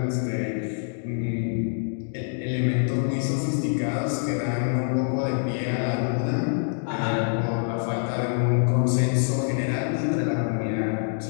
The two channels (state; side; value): silent; right; digital silence